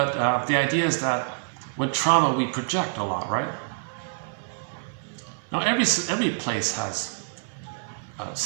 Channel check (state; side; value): silent; left; digital silence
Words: the idea is that with trauma we project a lot, right? Now every place has